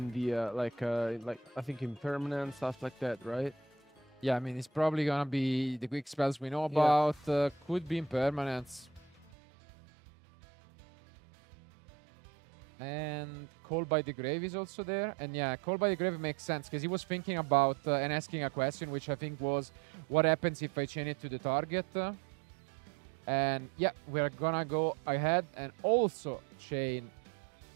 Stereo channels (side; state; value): left; drops out; at 9.3 s